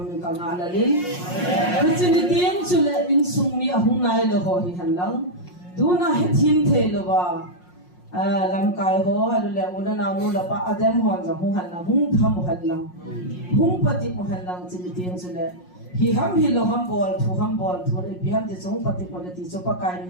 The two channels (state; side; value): late; right; 5.6 ms